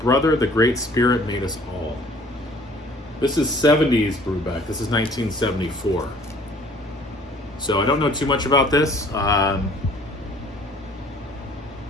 Brother, the Great Spirit Made Us All. This is 70s Brubeck. This is 1974. So I don't know too much about this.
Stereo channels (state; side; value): normal; both; correlation 0.54